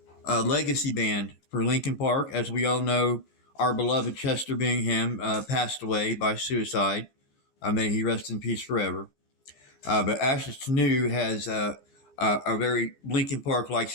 legacy band for Linkin Park. As we all know, our beloved Chester Bingham passed away by suicide. May he rest in peace forever. But Ashes to New has a very Linkin Park like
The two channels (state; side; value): late; right; 15 ms